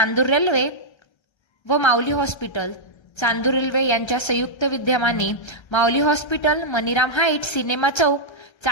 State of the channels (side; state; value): right; late; 1.3 ms